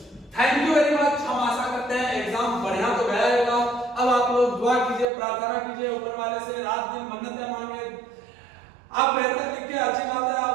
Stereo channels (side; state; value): left; drops out; at 5.1 s